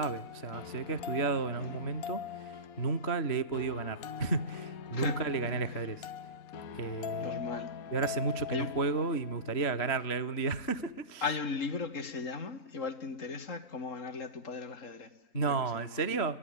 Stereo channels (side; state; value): right; late; 3.1 ms